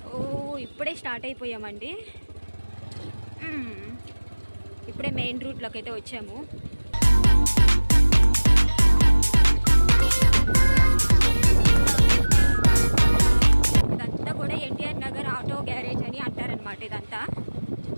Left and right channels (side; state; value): both; inverted; correlation -1.00